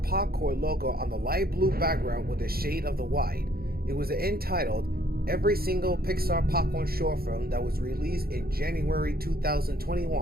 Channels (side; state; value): left; late; 0.44 ms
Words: Popcorn logo on the light blue background with a shade of the white. It was entitled Every Single Pixar Popcorn Short Film that was released in January